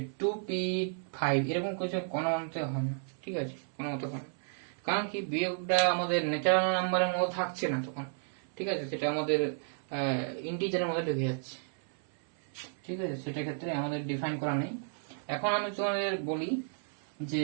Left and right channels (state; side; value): silent; left; 56 dB below the other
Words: 2p5 এরকম কিছু কোনো মতে হয় না, ঠিক আছে, কোনো মতে হয় না। কারণ কি, বিয়োগটা আমাদের ন্যাচারাল নাম্বারের মধ্যে থাকছে না তখন, ঠিক আছে, সেটা আমাদের ইন্টিজারের মধ্যে ঢুকে যাচ্ছে, ঠিক আছে, সেটা ক্ষেত্রে আমাদের ডিফাইন করা নেই। এখন আমি তোমাদের বলি